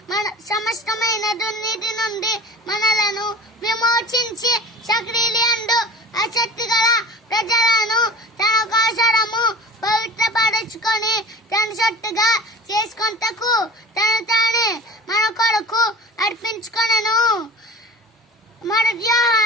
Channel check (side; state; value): both; normal; correlation 0.40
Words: మన సమస్తమైన దుర్నీతి నుండి మనలను విమోచించి సక్రియలందు ఆసక్తి గల ప్రజలను తన కోసరము పవిత్రపరచుకొని తన సొత్తుగా చేసుకొనుటకు తను తానే మన కొరకు అర్పించుకొనెను. మొదటి